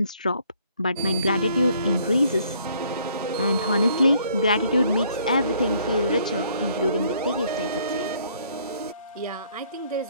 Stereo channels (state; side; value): inverted; both; correlation -0.64